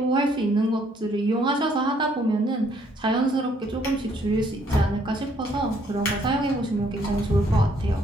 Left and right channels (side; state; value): both; normal; correlation 0.66